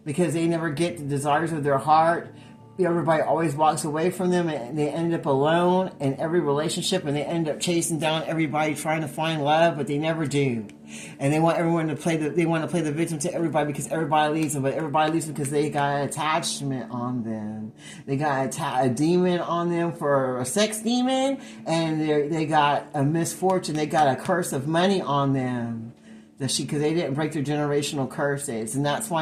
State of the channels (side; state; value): both; identical; correlation 1.00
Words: because they never get the desires of their heart. Everybody always walks away from them and they end up alone in every relationship, and they end up chasing down everybody trying to find love, but they never do. And they want everyone to play the victim to everybody because everybody leaves them, but everybody leaves them because they got an attachment on them. They got a demon on them for a sex demon, and they got a misfortune. They got a curse of money on them. Because they didn't break their generational curses, and that's